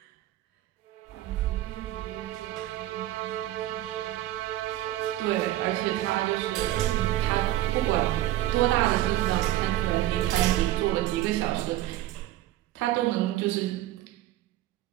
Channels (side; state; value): left; quieter; 15.0 dB